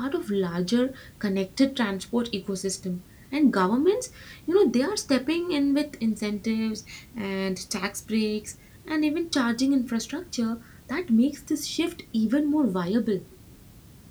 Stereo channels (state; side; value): identical; both; correlation 1.00